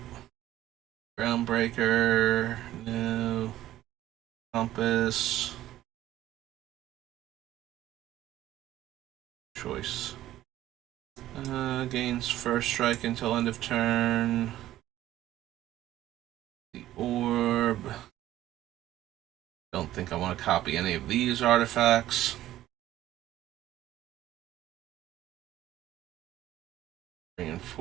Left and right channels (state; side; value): quieter; left; 13.9 dB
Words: Groundbreaker. No. Compass. Choice. Gains first strike until end of turn. The Orb. Don't think I want to copy any of these artifacts.